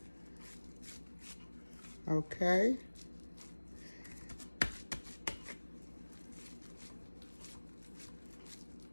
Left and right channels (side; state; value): both; inverted; correlation -1.00